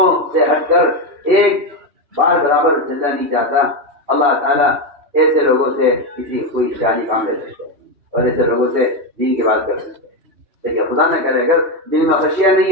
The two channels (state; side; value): late; left; 2.8 ms